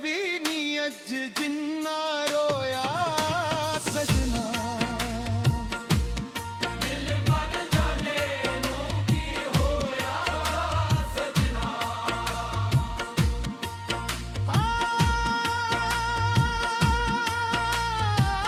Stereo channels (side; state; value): both; identical; correlation 1.00